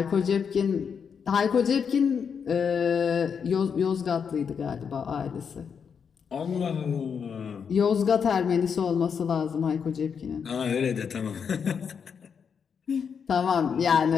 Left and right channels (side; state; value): right; quieter; 6.7 dB